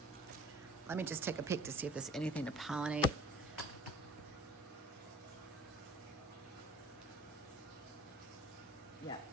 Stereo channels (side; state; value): both; normal; correlation 0.48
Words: Let me just take a peek to see if there's anything to pollinate. Yeah,